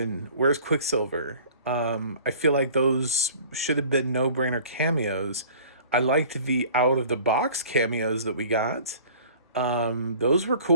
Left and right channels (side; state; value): both; inverted; correlation -0.47